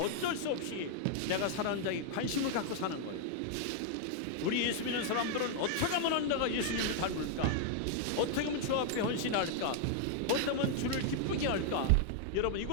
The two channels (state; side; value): different; both; correlation 0.00